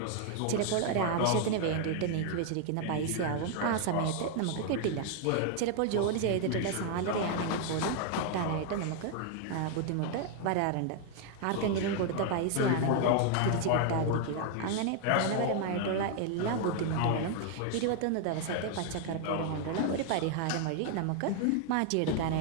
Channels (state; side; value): different; both; correlation 0.00